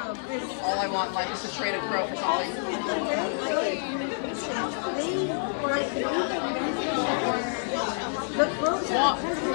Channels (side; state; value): right; silent; digital silence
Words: All I want in life is to trade a crow for something.